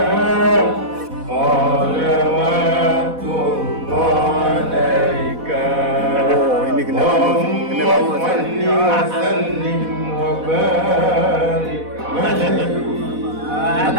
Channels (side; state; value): left; late; 4.1 ms